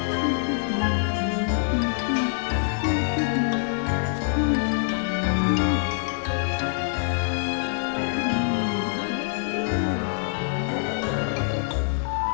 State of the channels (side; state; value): right; silent; digital silence